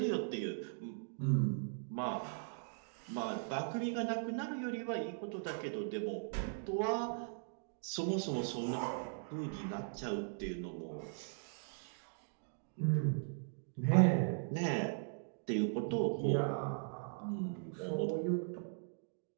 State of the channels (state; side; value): silent; left; digital silence